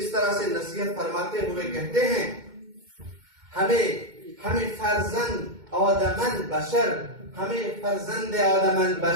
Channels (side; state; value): left; late; 2.2 ms